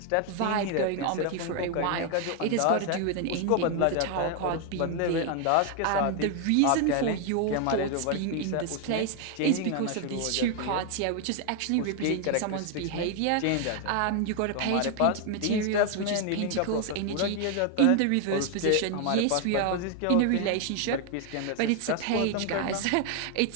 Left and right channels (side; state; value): both; different; correlation 0.01